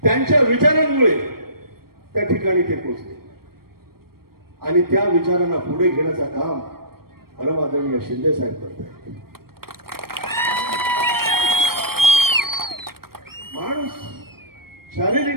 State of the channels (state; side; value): late; left; 0.94 ms